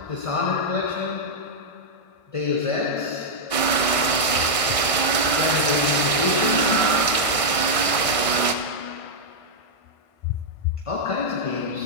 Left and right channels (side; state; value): right; late; 1.5 ms